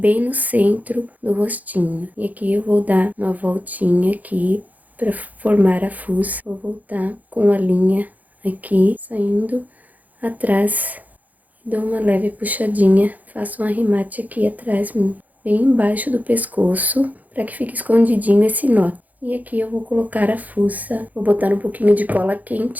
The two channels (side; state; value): left; late; 0.079 ms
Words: no centro do rostinho. E aqui eu vou dar uma voltinha aqui para formar a fuça. Vou voltar com a linha aqui, saindo atrás. Dou uma leve puxadinha. Faço um arremate aqui atrás, bem embaixo do pescoço, para que fique escondidinho esse nó. E aqui eu vou colocar a fuça, vou botar um pouquinho de cola